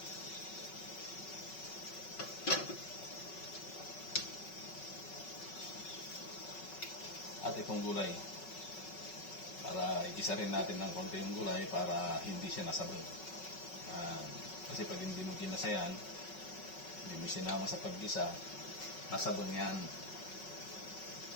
lahat itong gulay. Para igisa rin natin ng konti yung gulay para hindi siya nasabog. Kasi pag hindi mo ginasa yan, hindi mo sinama sa paggisa, nasabog yan.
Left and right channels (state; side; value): late; right; 5.3 ms